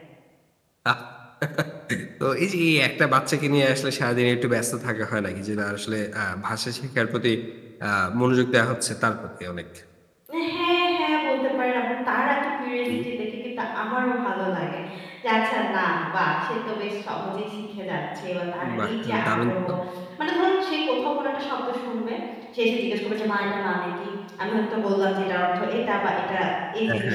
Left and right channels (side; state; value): both; identical; correlation 1.00